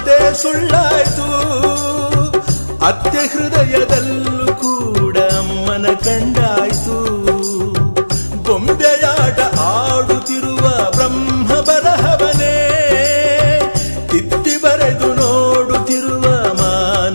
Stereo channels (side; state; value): both; inverted; correlation -1.00